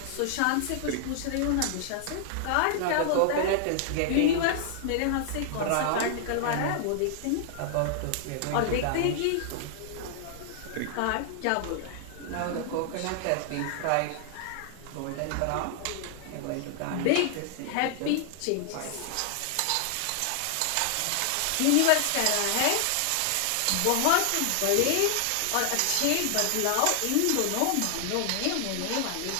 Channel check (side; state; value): both; different; correlation -0.01